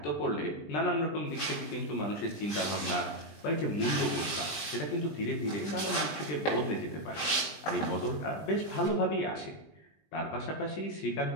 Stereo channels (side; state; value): right; late; 19 ms